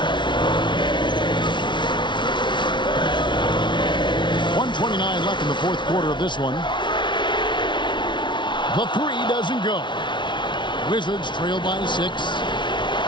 1:29 left in the 4th quarter of this one. The 3 doesn't go. Wizards trail by 6.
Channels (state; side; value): late; right; 0.23 ms